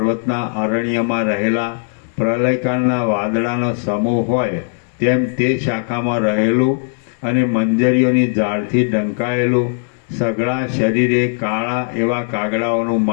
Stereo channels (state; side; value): silent; right; 68 dB below the other